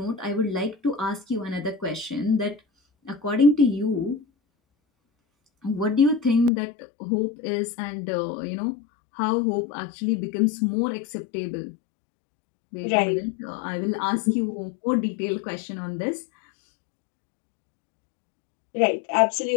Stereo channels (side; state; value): right; drops out; at 6.5 s